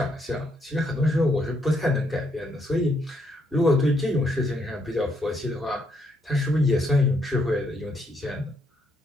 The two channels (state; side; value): normal; both; correlation 0.74